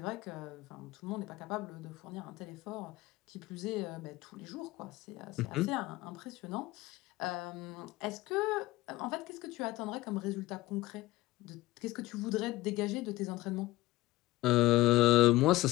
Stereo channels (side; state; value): right; quieter; 18.0 dB